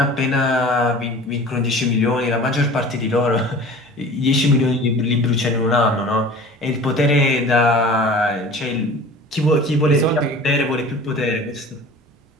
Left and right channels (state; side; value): normal; both; correlation 0.41